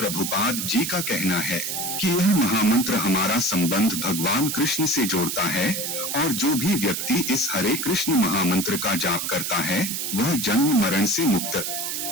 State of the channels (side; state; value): right; noise; hiss, 3 dB below the sound